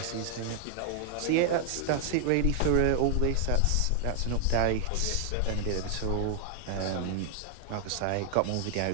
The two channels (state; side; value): different; both; correlation 0.00